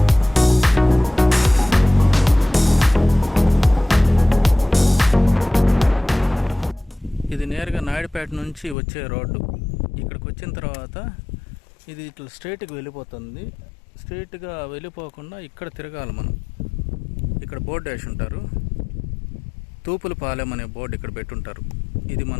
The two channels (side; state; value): right; drops out; at 8.8 s